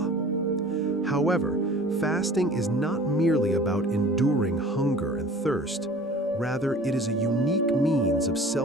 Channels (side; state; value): both; normal; correlation 0.46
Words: However, fasting is not merely about enduring hunger and thirst. Rather, it is a unique means of